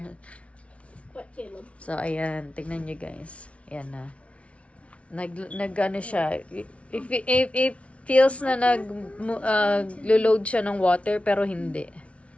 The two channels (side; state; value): right; late; 0.062 ms